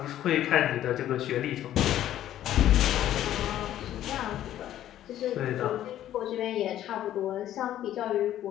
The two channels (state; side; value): quieter; right; 12.2 dB